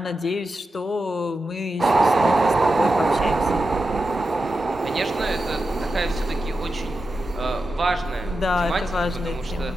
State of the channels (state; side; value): normal; both; correlation 0.90